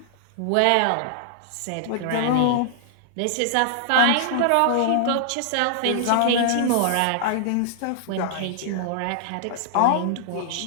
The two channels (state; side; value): different; both; correlation -0.01